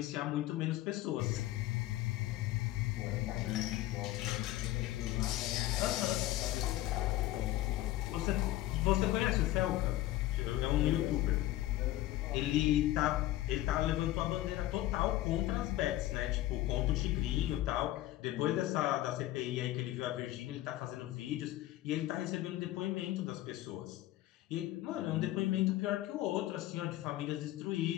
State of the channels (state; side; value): quieter; right; 15.3 dB